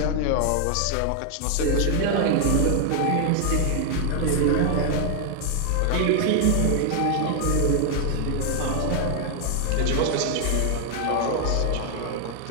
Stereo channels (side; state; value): both; different; correlation 0.00